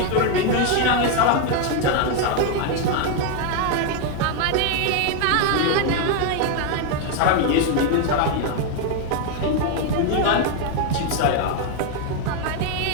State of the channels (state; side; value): different; both; correlation 0.01